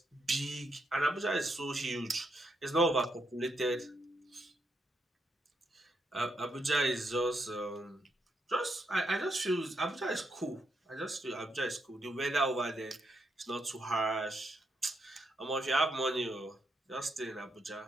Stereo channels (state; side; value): normal; both; correlation 0.80